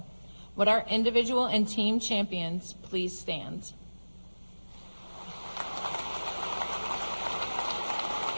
Would our individual and team champions please stand?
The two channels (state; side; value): inverted; both; correlation -1.00